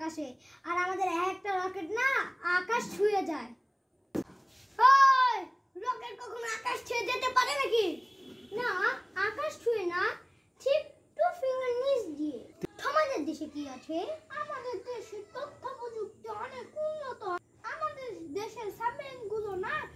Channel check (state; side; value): identical; both; correlation 1.00